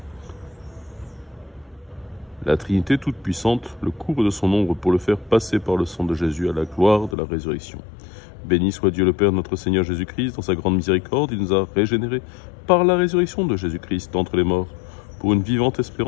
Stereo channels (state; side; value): drops out; right; at 7.2 s